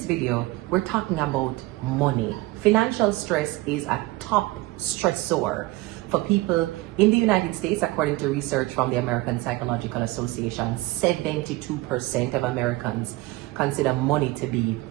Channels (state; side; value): quieter; left; 19.5 dB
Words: video, we're talking about money. Financial stress is a top stressor for people in the United States. According to research from the American Psychological Association, 72% of Americans consider money to be